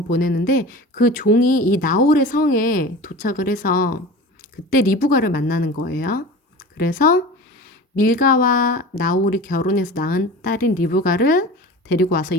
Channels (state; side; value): normal; both; correlation 0.35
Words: 보내는데 그 종이 이 나홀의 성에 도착을 해서 그때 리브가를 만나는 거예요. 그래서 밀가와 나홀이 결혼해서 낳은 딸인 리브가를 데리고 와서